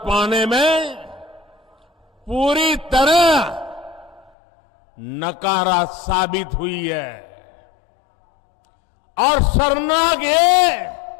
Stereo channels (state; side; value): drops out; right; at 4.3 s